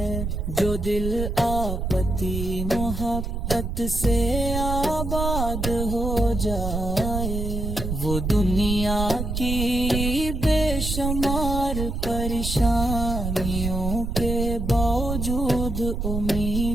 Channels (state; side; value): noise; right; rumble, 3 dB below the sound